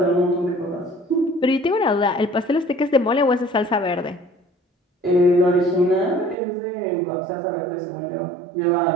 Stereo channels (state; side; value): drops out; left; at 6.4 s